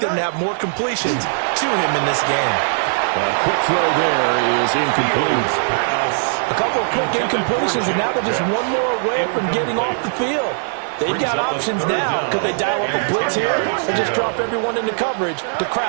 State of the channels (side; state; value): left; silent; digital silence